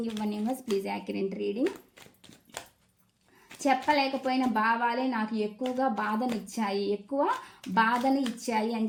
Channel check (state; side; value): identical; both; correlation 1.00